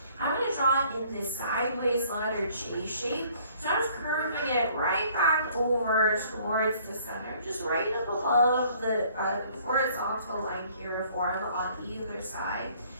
I'm going to draw in this sideways letter J shape. So I'm just curving it right back over towards the center, just right up above the horizontal line here for him on either side.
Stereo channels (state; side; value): inverted; both; correlation -0.59